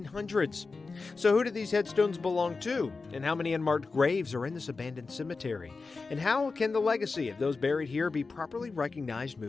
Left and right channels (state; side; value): quieter; right; 4.2 dB